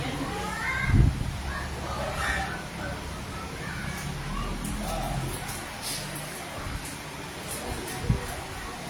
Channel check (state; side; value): identical; both; correlation 1.00